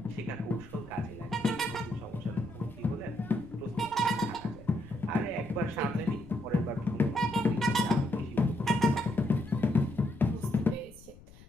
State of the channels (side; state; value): left; noise; rumble, 21 dB below the sound